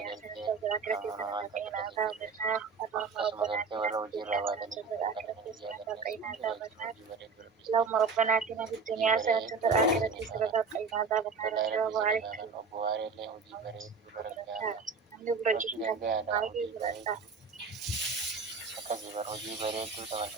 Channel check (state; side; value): quieter; left; 4.9 dB